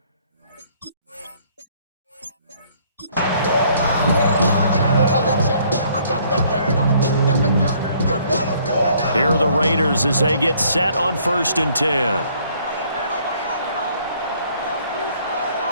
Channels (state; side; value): inverted; both; correlation -0.62